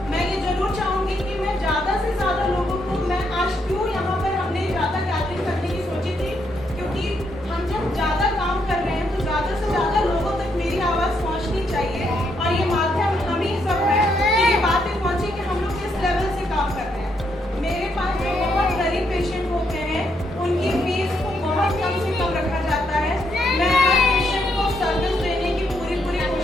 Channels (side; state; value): both; normal; correlation 0.76